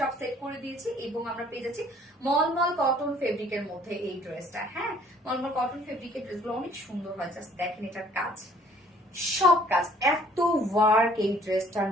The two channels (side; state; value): both; normal; correlation 0.58